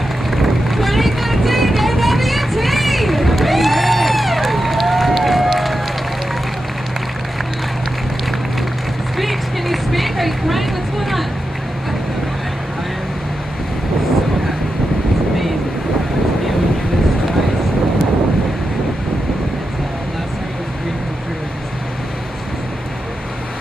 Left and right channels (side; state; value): both; normal; correlation 0.89